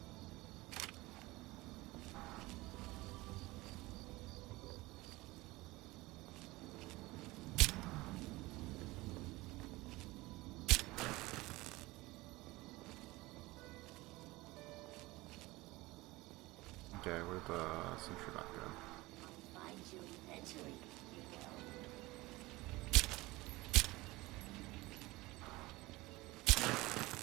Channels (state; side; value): quieter; left; 20.7 dB